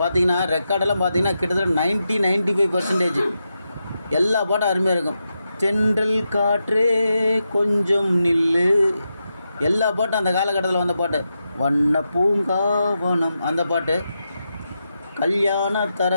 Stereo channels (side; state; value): both; inverted; correlation -0.87